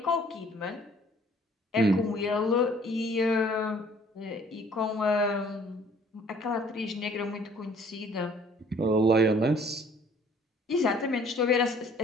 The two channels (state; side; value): normal; both; correlation 0.56